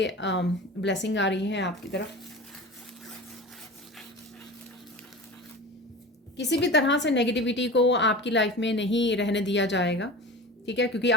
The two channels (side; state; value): both; normal; correlation 0.34